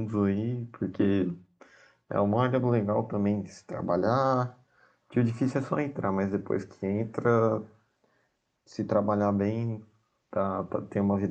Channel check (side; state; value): both; identical; correlation 1.00